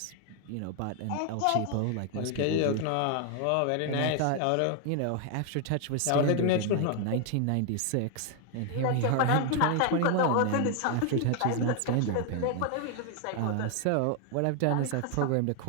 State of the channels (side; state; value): both; different; correlation 0.00